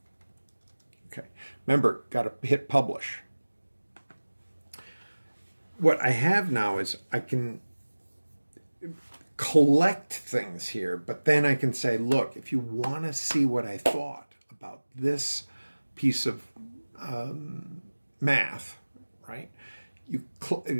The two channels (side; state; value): both; inverted; correlation -1.00